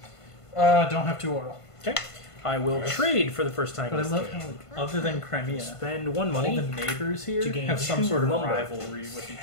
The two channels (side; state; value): right; late; 1.5 ms